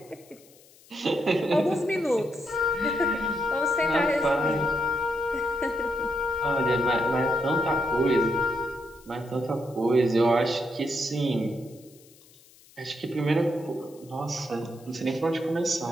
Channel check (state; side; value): noise; left; hiss, 26 dB below the sound